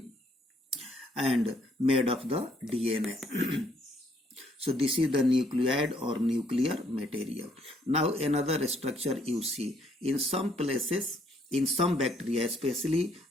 and made of the DNA. So this is the nucleoid or nuclear material. Now another structure you see in some places, in some bacteria, especially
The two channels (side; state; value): both; normal; correlation 0.68